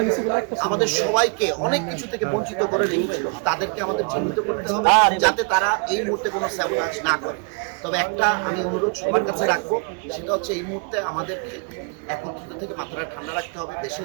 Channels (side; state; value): left; quieter; 35.6 dB